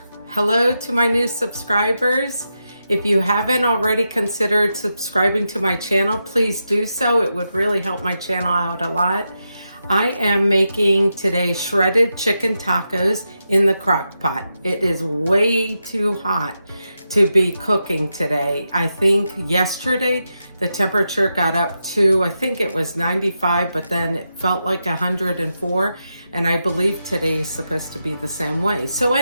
Hello to my new subscribers. If you haven't already considered subscribing to my channel, please do so. It would really help my channel out a lot. I am making today shredded chicken tacos in the crock pot. It is way too hot to be cooking today. I think yesterday the temperature got up to, I think it was 95, but then it felt like 104. And I believe today is supposed to be the same way. So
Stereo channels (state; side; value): inverted; both; correlation -0.87